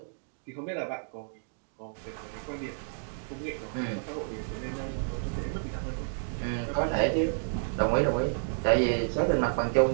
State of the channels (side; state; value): left; silent; digital silence